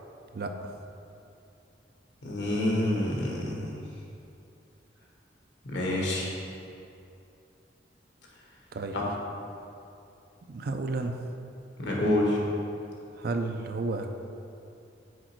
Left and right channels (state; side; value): normal; both; correlation 0.62